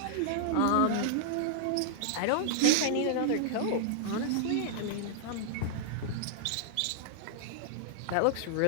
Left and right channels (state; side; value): different; both; correlation -0.01